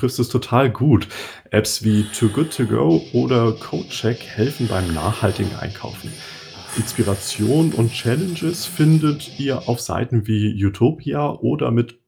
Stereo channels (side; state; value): both; identical; correlation 1.00